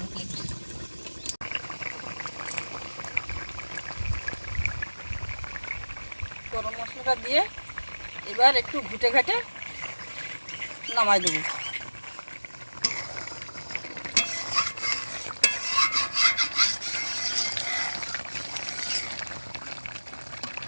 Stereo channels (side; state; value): both; inverted; correlation -1.00